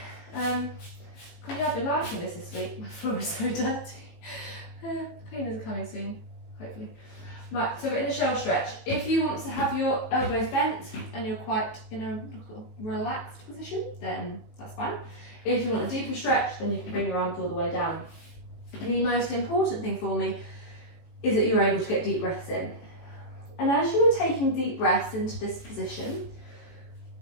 I've been liking this week. My floor is so dirty. Cleaners are coming soon, hopefully. Right, so we're in a shell stretch. If you want to have your elbows bent and you're quite in a relaxed position, then that's fine. If you want a deeper stretch, then you can bring your arms all the way down. The most important thing for me is that you're able to get deep breaths in. And as you are taking deep breaths into this position,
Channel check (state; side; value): late; right; 18 ms